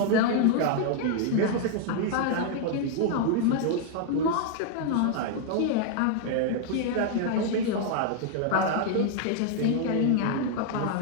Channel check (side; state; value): both; different; correlation 0.00